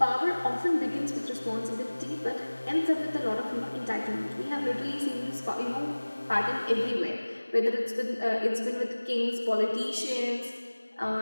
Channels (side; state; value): both; inverted; correlation -1.00